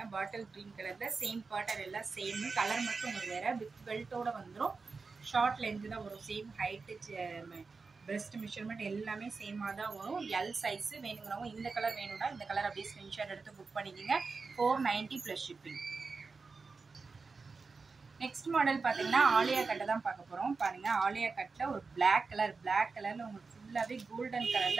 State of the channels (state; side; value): quieter; left; 4.4 dB